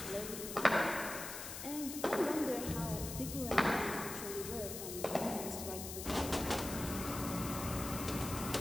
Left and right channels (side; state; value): left; noise; hiss, 7 dB below the sound